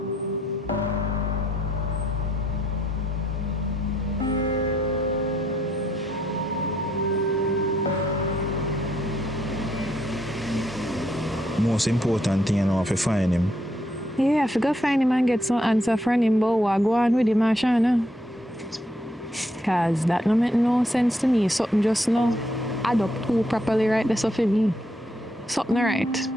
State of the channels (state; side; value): normal; both; correlation 0.74